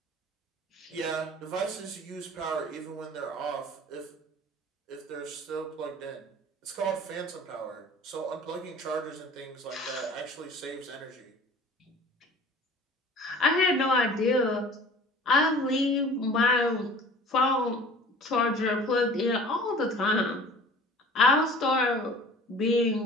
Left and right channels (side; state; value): both; normal; correlation 0.45